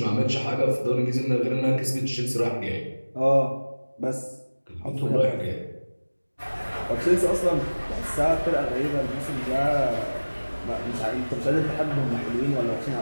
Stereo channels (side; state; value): both; inverted; correlation -1.00